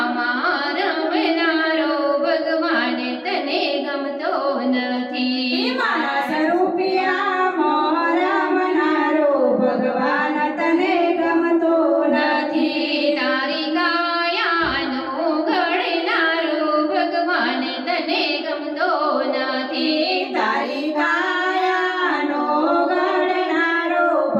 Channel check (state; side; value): identical; both; correlation 1.00